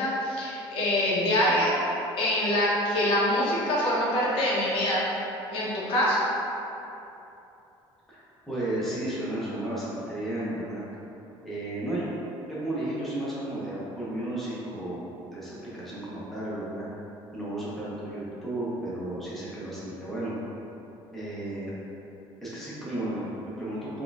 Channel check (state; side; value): normal; both; correlation 0.39